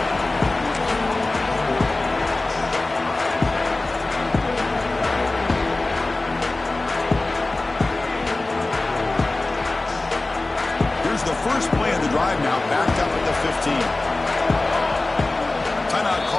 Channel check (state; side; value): quieter; right; 3.0 dB